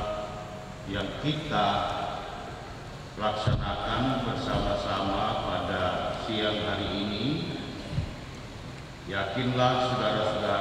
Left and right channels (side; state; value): both; identical; correlation 1.00